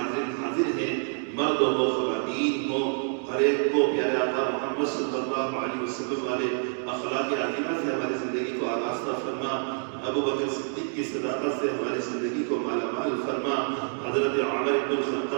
ہیں مرد ہو خواتین ہو ہر ایک کو پیارے آقا محمد صلی اللہ علیہ وسلم والے اخلاق عظیمہ سے ہماری زندگی کو آراستہ فرما. ابو بکر صدیق کی صداقت سے ہماری زندگی کو مالا مال فرما. حضرت عمر بن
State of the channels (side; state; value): left; silent; 55 dB below the other